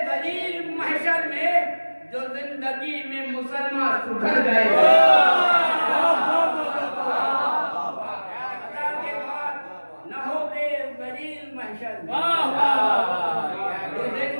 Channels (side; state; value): both; inverted; correlation -1.00